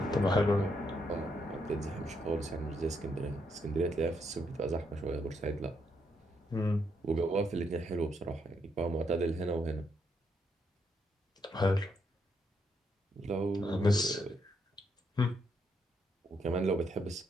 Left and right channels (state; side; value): normal; both; correlation 0.77